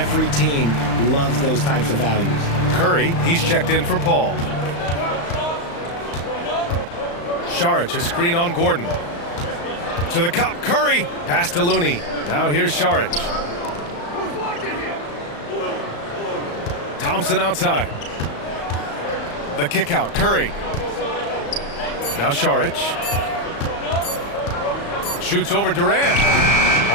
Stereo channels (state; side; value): late; right; 35 ms